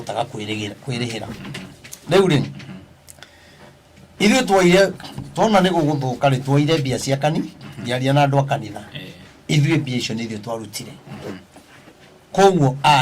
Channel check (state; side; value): identical; both; correlation 1.00